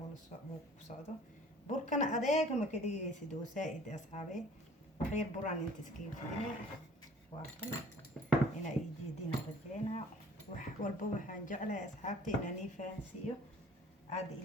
ku socdo burkana adeega ma ka dhigaysid oo saaid asxaabe waxyar buraan inta iskaga fidinay waa kan inaa ii jeedina rajeynaa wax walba waxaan jeclahay asxaabta inaan ii fahansiiyo aad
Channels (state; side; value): normal; both; correlation 0.52